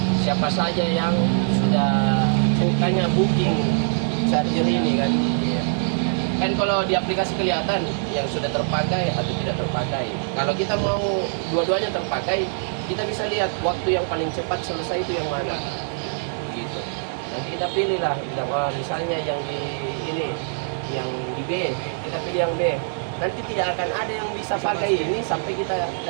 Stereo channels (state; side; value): silent; left; digital silence